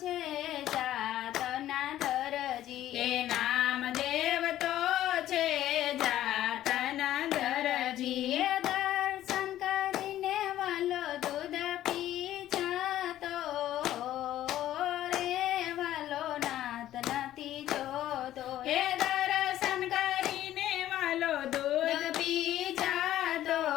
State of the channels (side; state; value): right; quieter; 13.1 dB